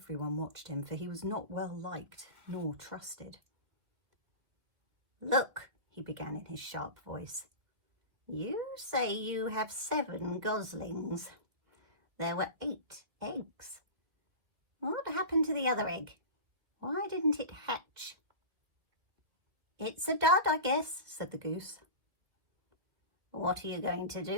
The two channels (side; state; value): left; late; 2.5 ms